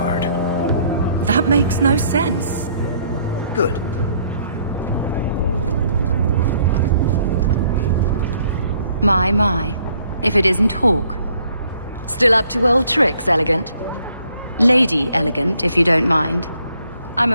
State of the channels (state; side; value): inverted; both; correlation -0.65